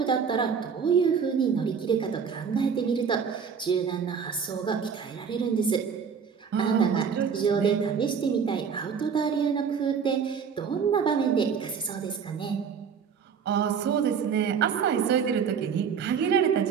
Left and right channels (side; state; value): left; quieter; 6.6 dB